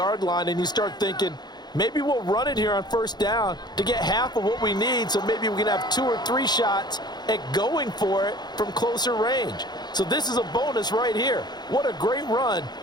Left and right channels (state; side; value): late; right; 0.20 ms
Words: line and you start thinking, maybe we'll run it here on 1st down to get half of what we need, so maybe we can have 2 or 3 shots at going for it from closer range. So this is a bonus right here. What a great run